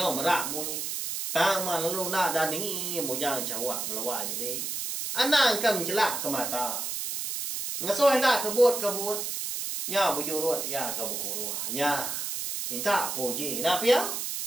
merak bunyi. Tang mah lalu nak dani bujang cawak balawa jadi. Anang kam celak ke mata. Ngasoh hendak kebut. Nya bujurut ya ke bukuruah. Nya minta puji. Nak pia?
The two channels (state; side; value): noise; right; hiss, 3 dB below the sound